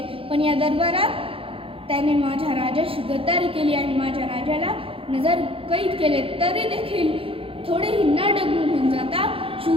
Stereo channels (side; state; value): left; late; 0.27 ms